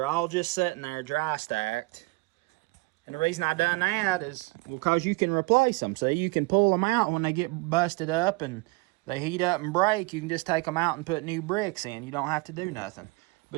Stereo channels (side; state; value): left; quieter; 24.8 dB